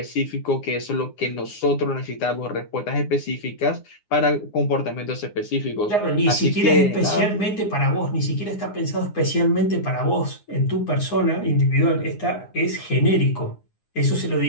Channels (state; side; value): late; right; 9.7 ms